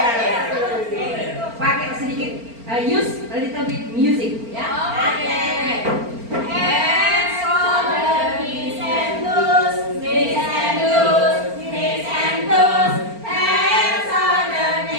Pakai sedikit, use a little bit music, ya. Okay. Head, shoulder, knees and toes, head, shoulder, knees and toes.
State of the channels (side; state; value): left; late; 4.4 ms